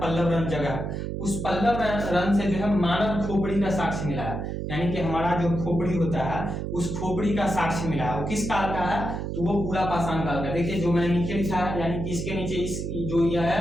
जगह। उस पल्लवरन से जो है मानव खोपड़ी का साक्ष्य मिला है, यानी कि हमारा जो खोपड़ी होता है उस खोपड़ी का साक्ष्य मिला है। वो किस काल का है? तो वो पूरा पाषाण काल का। देखिए जो मैंने नीचे लिखा है, यानी कि इसके नीचे इस जो यह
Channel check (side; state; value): right; noise; hum, 4 dB below the sound